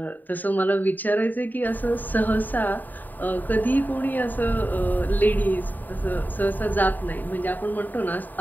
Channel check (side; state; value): right; late; 0.087 ms